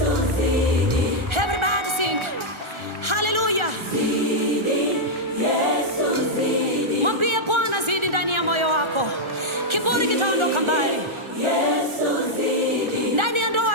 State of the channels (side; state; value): left; late; 1.3 ms